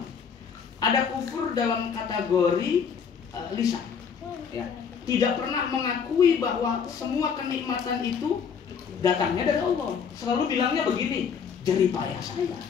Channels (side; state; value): right; quieter; 6.7 dB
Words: Ada kufur dalam kategori lisan. Ya. Tidak pernah mengakui bahwa semua kenikmatan itu datangnya dari Allah. Selalu bilangnya begini, jerih payah saya,